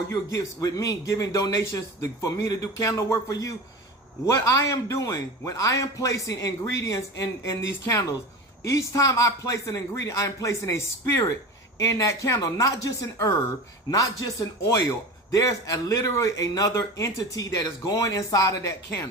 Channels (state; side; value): normal; both; correlation 0.30